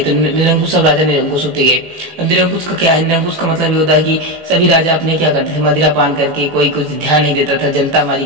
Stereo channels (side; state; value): left; late; 18 ms